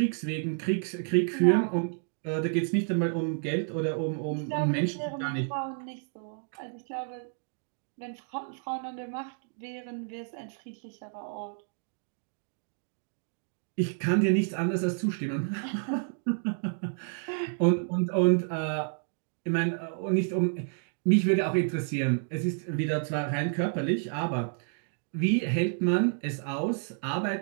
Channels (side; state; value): left; silent; 58 dB below the other